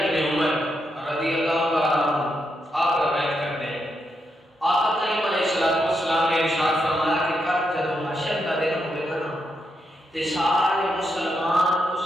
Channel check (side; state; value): both; normal; correlation 0.82